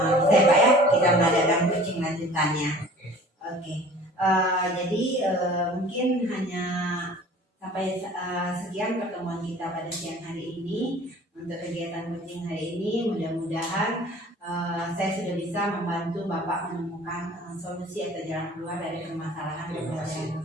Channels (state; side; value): normal; both; correlation 0.47